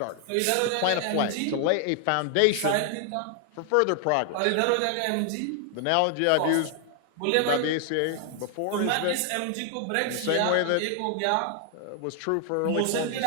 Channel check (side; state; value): both; different; correlation 0.00